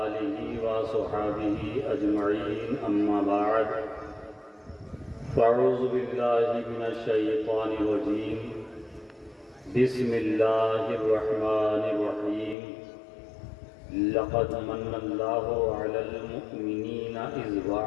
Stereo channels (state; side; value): drops out; right; at 12.6 s